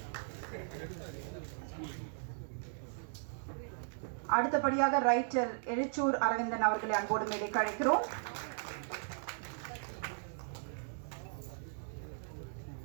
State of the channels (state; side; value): silent; left; digital silence